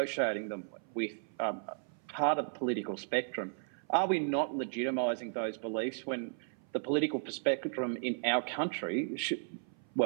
them with part of the political spectrum, are we not legitimising those beliefs when the political spectrum in our country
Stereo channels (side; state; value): left; silent; 55 dB below the other